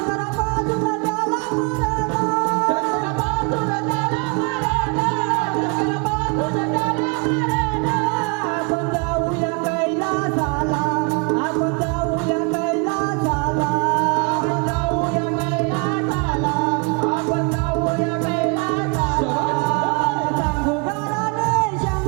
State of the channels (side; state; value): left; quieter; 33.9 dB